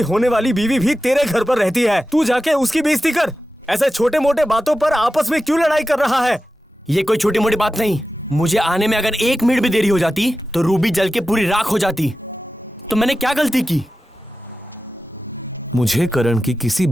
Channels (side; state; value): both; normal; correlation 0.93